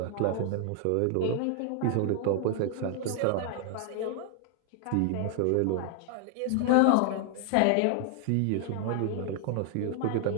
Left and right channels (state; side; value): different; both; correlation 0.00